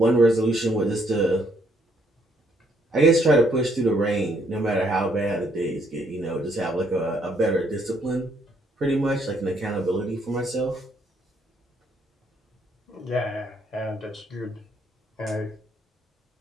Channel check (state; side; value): normal; both; correlation 0.70